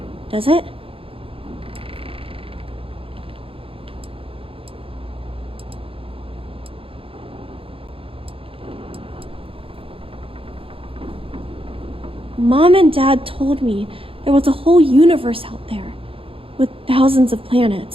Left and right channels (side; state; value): left; late; 0.27 ms